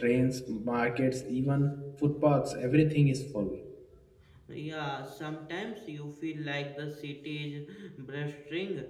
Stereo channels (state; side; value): identical; both; correlation 1.00